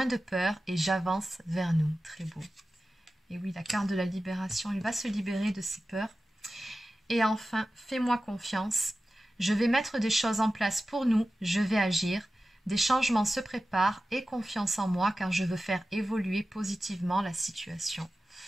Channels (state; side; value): normal; both; correlation 0.95